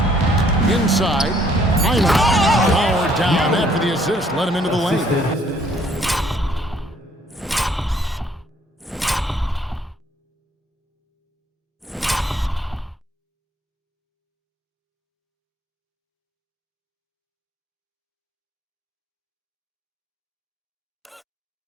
Inside. Powered down after the assist. Let him into the lane.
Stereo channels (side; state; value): both; normal; correlation 0.63